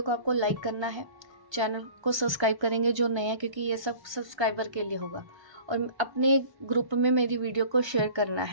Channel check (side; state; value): left; late; 1.3 ms